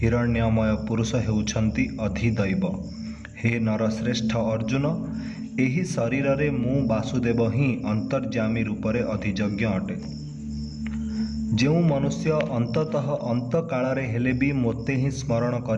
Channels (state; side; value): identical; both; correlation 1.00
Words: ପୁରୁଷ ହେଉଛନ୍ତି ଅଧିଦୈବ। ହେ ନରଶ୍ରେଷ୍ଠ ଅର୍ଜୁନ, ଏହି ଶରୀରରେ ମୁଁ ବାସୁଦେବ ହିଁ ଅନ୍ତର୍ଯ୍ୟାମୀ ରୂପରେ ଅଧିଯଜ୍ଞ ଅଟେ। ଯେଉଁ ମନୁଷ୍ୟ ଅନ୍ତତଃ ଅନ୍ତକାଳରେ ହେଲେ ବି ମୋତେ ହିଁ ସ୍ମରଣ